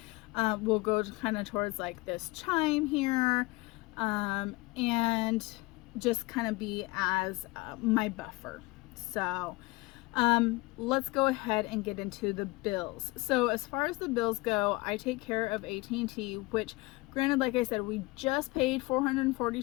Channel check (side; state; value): right; quieter; 23.2 dB